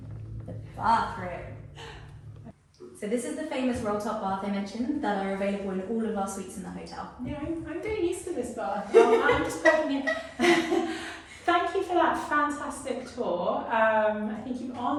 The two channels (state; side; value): identical; both; correlation 1.00